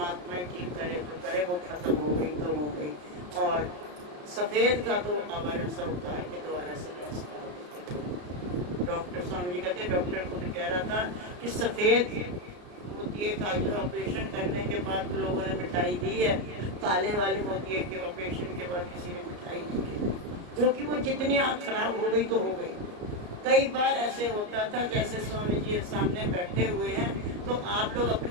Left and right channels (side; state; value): left; late; 34 ms